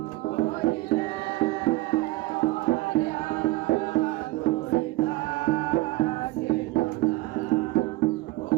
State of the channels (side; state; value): left; quieter; 19.5 dB